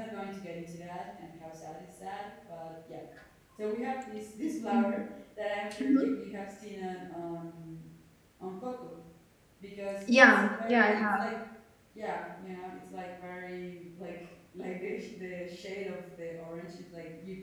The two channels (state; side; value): identical; both; correlation 1.00